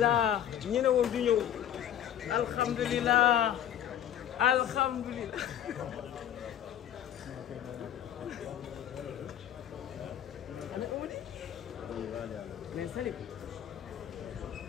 ñu ne woon du ñëw alhamdulilah mais Salim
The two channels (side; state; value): right; quieter; 10.4 dB